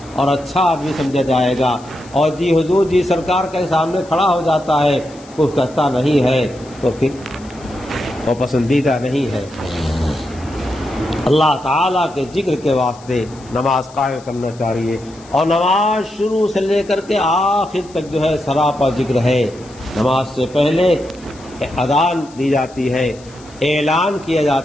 اور اچھا آدمی سمجھا جائے گا۔ اور جی حضور جی سرکار کے سامنے کھڑا ہو جاتا ہے، کچھ کہتا نہیں ہے، تو پھر وہ پسندیدہ نہیں ہے۔ اللہ تعالیٰ کے ذکر کے واسطے نماز قائم کرنا چاہیے، اور نماز شروع سے لے کر کے آخر تک جو ہے سراپا ذکر ہے۔ نماز سے پہلے اذان دی جاتی ہے، اعلان کیا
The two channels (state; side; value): noise; left; hiss, 24 dB below the sound